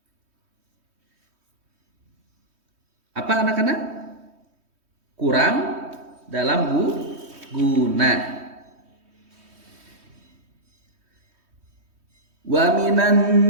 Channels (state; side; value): late; left; 3.2 ms